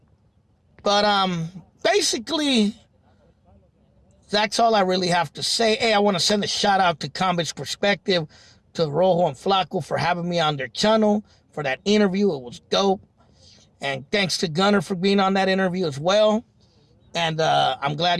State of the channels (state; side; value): identical; both; correlation 1.00